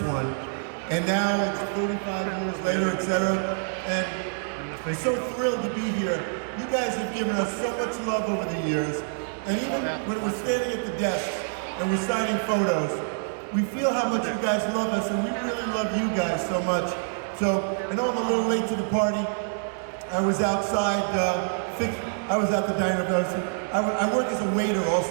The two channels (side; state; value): left; silent; digital silence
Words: one, and now it's 35 years later, etc. And we're so thrilled to be here. You guys have given us so much love over the years, and even when we're standing at the desk and we're signing photos, we feel how much you guys love us, and we really love you guys so much. So, I know I'm a little late to the party. I was outside, I was at the diner. I work as a waiter